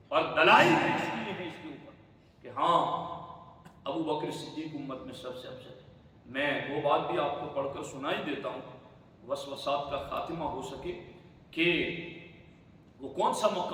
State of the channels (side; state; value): both; identical; correlation 1.00